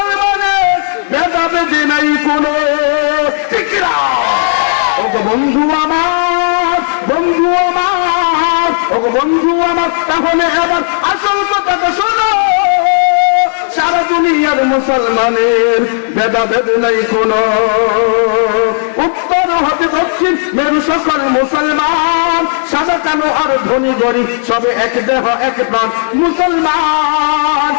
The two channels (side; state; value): right; silent; digital silence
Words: ভেদাভেদি নাই কোনো, ঠিক না? ওগো বন্ধু আমার, বন্ধু আমার, ওগো বন্ধু আমার, তাহলে এবার আসল কথাটা শোনো, সারা দুনিয়ার মুসলমানের ভেদাভেদ নাই কোনো, উত্তর হতে দক্ষিণ মেরু সকল মুসলমান, সাদা কালো আর ধনী গরিব সবে এক দেহ এক প্রাণ মুসলমান,